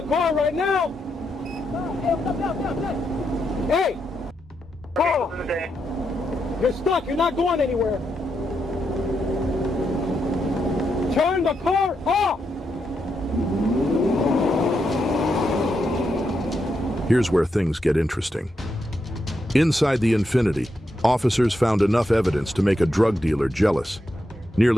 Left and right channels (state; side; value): normal; both; correlation 0.83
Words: car right now. Hey! Carl! You're stuck. You're not going anywhere. Turn the car off! Here's where things get interesting. Inside the Infiniti, officers found enough evidence to make a drug dealer jealous.